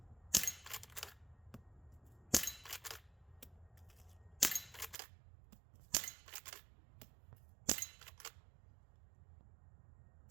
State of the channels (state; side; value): drops out; left; at 5.0 s